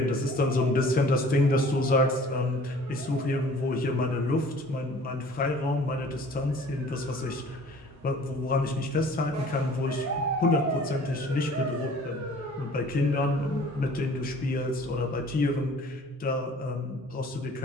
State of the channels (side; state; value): both; normal; correlation 0.50